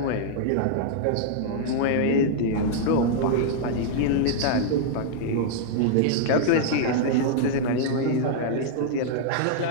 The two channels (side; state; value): both; different; correlation -0.01